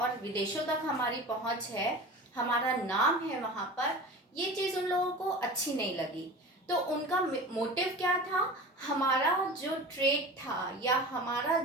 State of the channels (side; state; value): both; normal; correlation 0.35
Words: विदेशों तक हमारी पहुंच है, हमारा नाम है वहाँ पर, ये चीज़ उन लोगों को अच्छी नहीं लगी। तो उनका मोटिव क्या था, हमारा जो ट्रेड था या हमारा